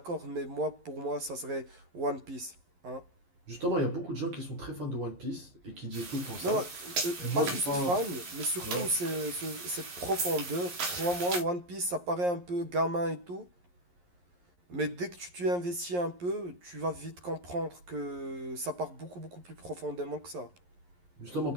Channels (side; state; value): left; late; 11 ms